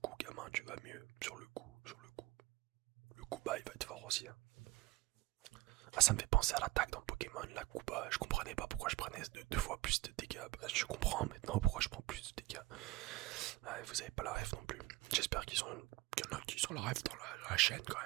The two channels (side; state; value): left; quieter; 17.8 dB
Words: gamin, tu vas mieux. Sur le coup. Le Kuba, il va être fort aussi. Hein. Ah, ça me fait penser à l'attaque dans Pokémon, la Kuba. Je comprenais pas pourquoi je prenais deux fois plus de dégâts. Bah, je comprends maintenant pourquoi je prends plus de dégâts. Ouais, vous avez pas la ref non plus. J'espère qu'il y en a qui sont la ref dans la chaîne quand